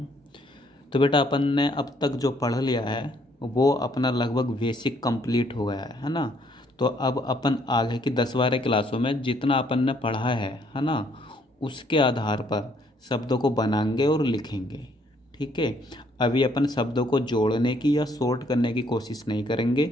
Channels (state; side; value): normal; both; correlation 0.67